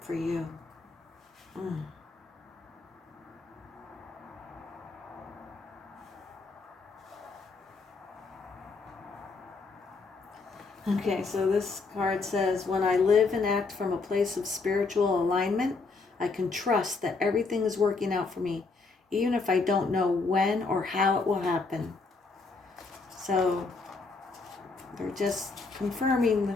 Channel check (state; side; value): quieter; right; 4.1 dB